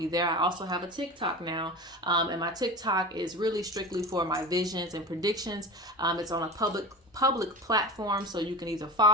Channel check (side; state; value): both; normal; correlation 0.31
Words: there. I also have a TikTok now. And my TikTok is really strictly for my visions and predictions. It's on a public platform, so you can either